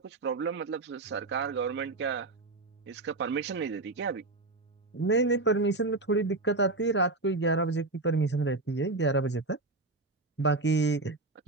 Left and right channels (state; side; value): quieter; left; 3.2 dB